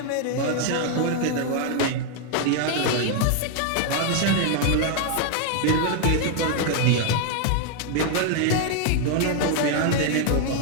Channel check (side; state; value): both; different; correlation 0.00